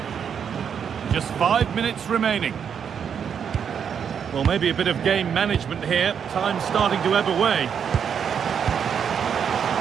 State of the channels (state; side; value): quieter; left; 7.6 dB